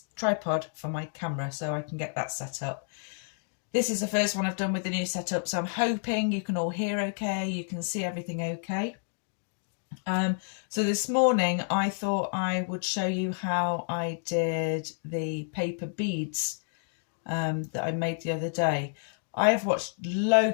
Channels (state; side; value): silent; right; digital silence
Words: tripod for my camera so I can get that set up. This is the first one I've done with the new setup, so I'm hoping you can all hear okay, you can see everything okay. So this morning I thought I would show you how I did the paper beads that I made the other day. I have watched